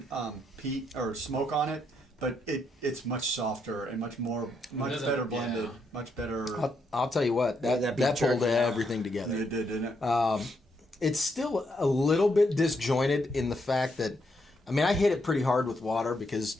peat or smoke on it, but it's much softer and much doesn't- better blended, yeah. much better. I'll tell you what, Yeah, that beef pulled jerky, everything together. It did, didn't it? It's still a little bit disjointed in the fact that, I mean, I hit it pretty hard with water because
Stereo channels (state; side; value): normal; both; correlation 0.77